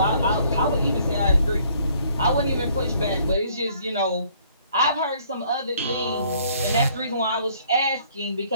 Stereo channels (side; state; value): both; inverted; correlation -0.62